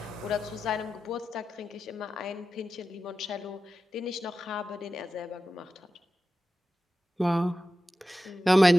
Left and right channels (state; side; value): normal; both; correlation 0.93